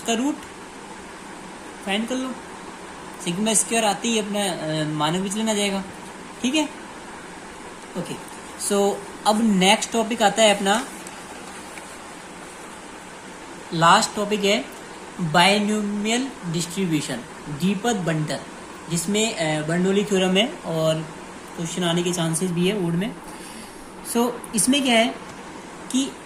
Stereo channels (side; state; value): both; identical; correlation 1.00